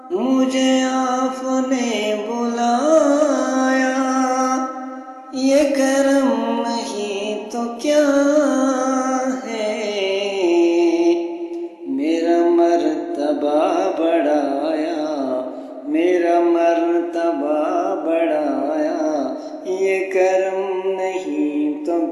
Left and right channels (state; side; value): identical; both; correlation 1.00